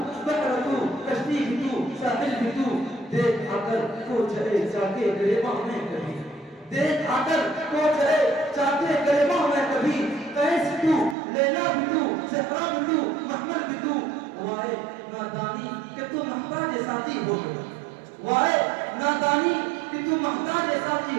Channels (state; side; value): drops out; left; at 11.2 s